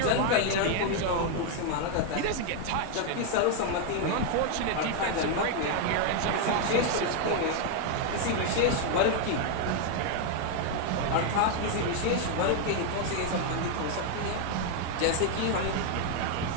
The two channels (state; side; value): different; both; correlation 0.00